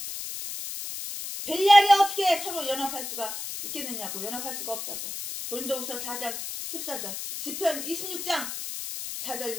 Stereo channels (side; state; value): left; noise; hiss, 6 dB below the sound